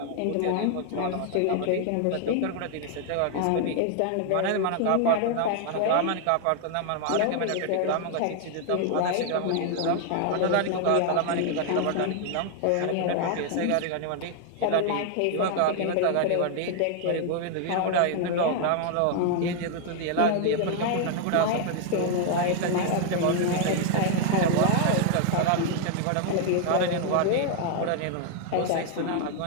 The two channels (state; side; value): different; both; correlation 0.00